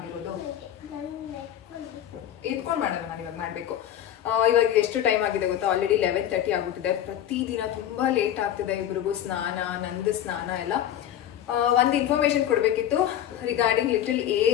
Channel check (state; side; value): quieter; right; 11.0 dB